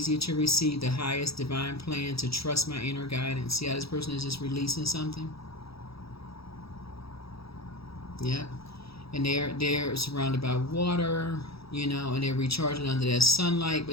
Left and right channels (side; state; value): right; late; 0.77 ms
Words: to receive the highest divine plan, to trust my inner guidance. See how this person is just releasing something? Yep. And they're surrounded by water, and they're recharging under that sunlight.